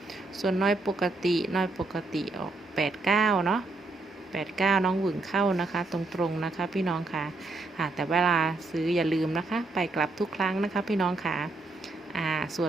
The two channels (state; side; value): quieter; left; 3.3 dB